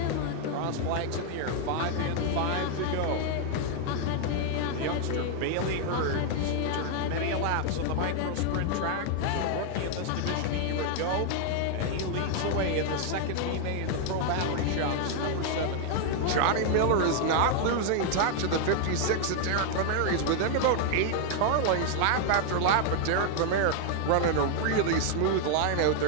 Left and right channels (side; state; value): both; different; correlation 0.00